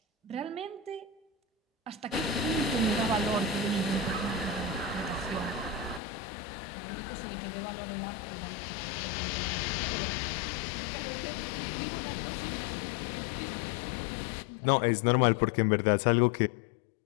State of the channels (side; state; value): right; drops out; at 6.0 s